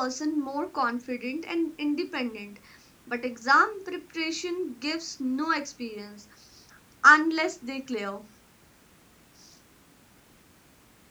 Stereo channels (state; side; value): identical; both; correlation 1.00